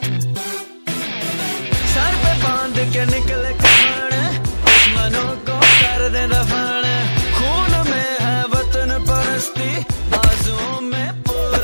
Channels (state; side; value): inverted; both; correlation -1.00